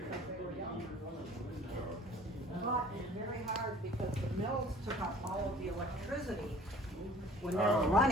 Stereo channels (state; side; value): normal; both; correlation 0.50